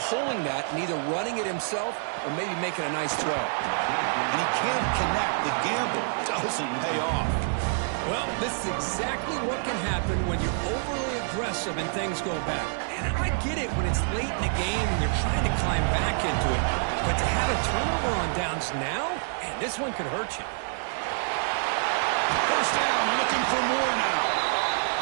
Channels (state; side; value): silent; left; digital silence